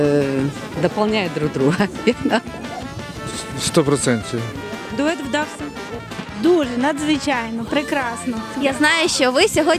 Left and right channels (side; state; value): both; identical; correlation 1.00